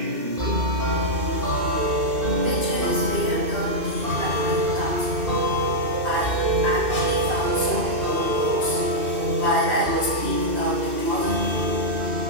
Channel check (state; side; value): late; left; 2.6 ms